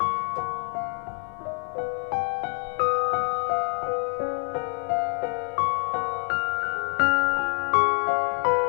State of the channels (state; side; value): quieter; right; 35.6 dB